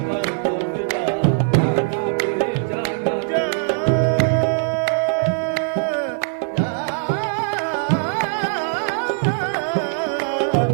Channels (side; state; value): left; silent; digital silence